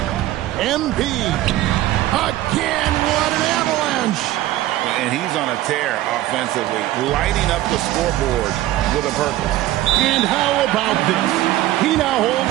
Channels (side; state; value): left; quieter; 15.0 dB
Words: MP. Again, what an avalanche. And he's on a tear offensively, lighting up the scoreboard with a purpose. And how about this? He now